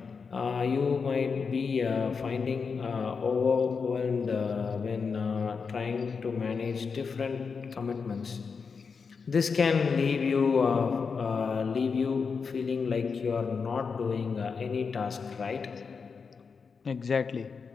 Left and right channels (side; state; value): right; quieter; 5.4 dB